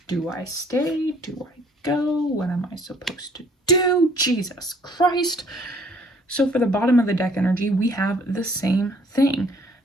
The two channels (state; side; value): normal; both; correlation 0.60